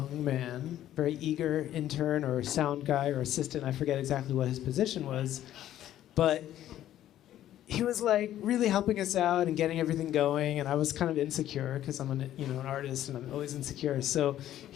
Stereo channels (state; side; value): quieter; right; 12.3 dB